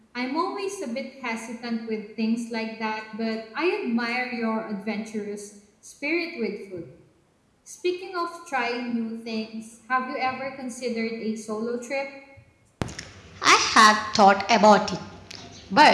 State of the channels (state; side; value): identical; both; correlation 1.00